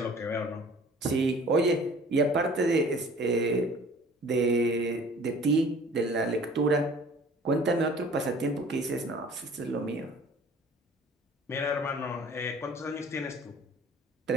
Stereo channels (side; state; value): both; normal; correlation 0.49